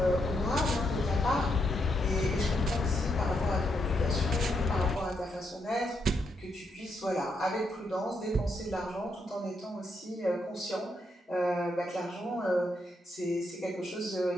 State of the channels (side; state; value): both; normal; correlation 0.79